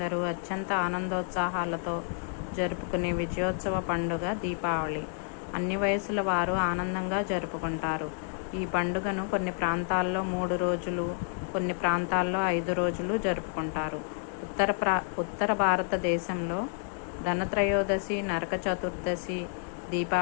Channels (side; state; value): right; silent; 58 dB below the other